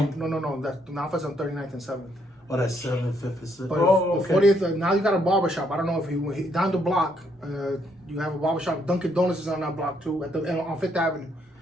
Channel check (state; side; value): normal; both; correlation 0.72